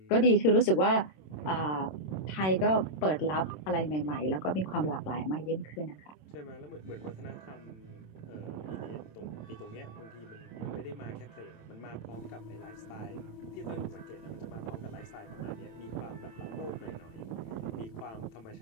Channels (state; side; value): late; right; 26 ms